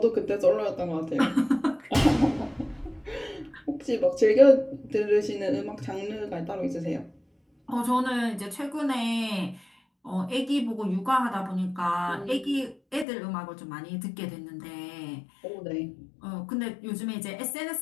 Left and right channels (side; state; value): right; drops out; at 13.1 s